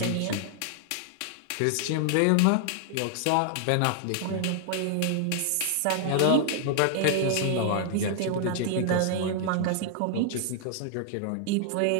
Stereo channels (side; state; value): both; different; correlation 0.00